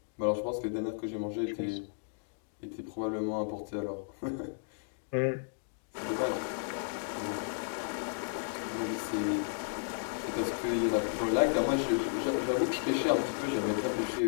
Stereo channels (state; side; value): silent; right; digital silence